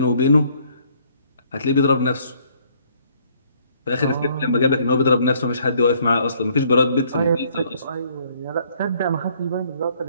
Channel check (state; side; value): inverted; both; correlation -0.64